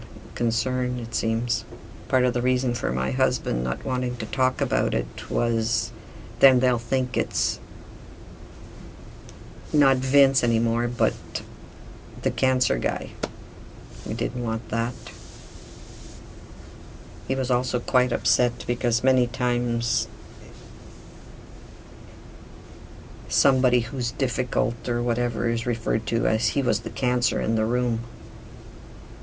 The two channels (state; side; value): identical; both; correlation 1.00